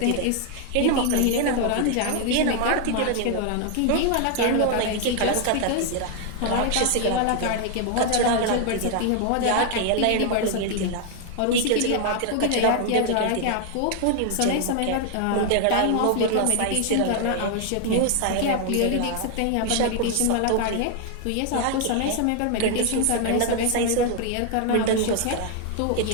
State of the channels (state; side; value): different; both; correlation 0.00